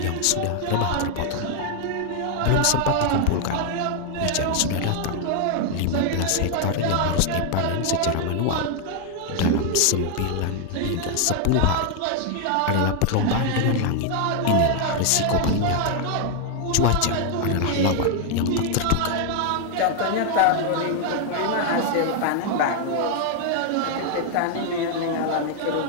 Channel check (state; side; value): different; both; correlation 0.00